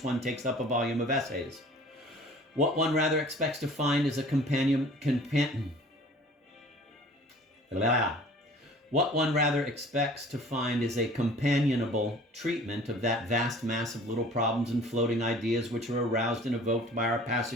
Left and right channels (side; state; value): both; normal; correlation 0.48